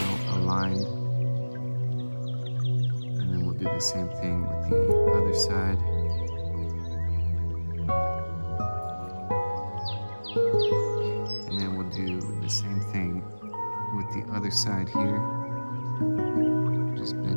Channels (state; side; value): inverted; both; correlation -1.00